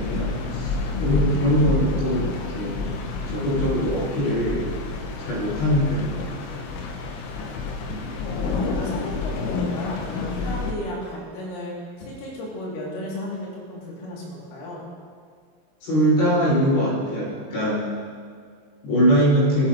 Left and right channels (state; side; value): late; right; 23 ms